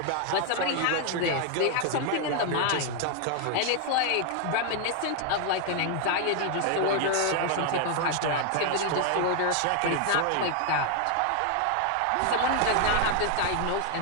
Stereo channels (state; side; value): different; both; correlation 0.00